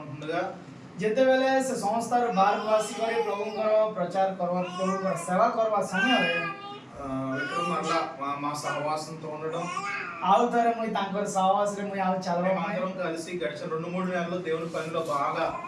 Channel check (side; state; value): both; identical; correlation 1.00